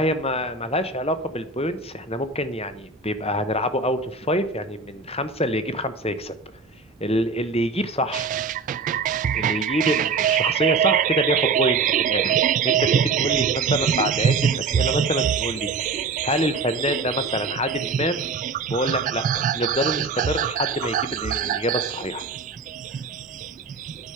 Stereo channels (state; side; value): quieter; left; 4.0 dB